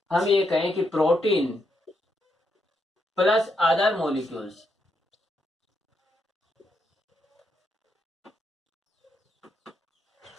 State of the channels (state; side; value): normal; both; correlation 0.80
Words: हम ये कहें कि protein plus other molecules,